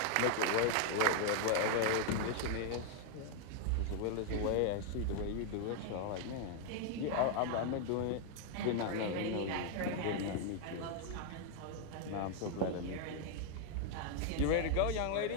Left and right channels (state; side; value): different; both; correlation 0.00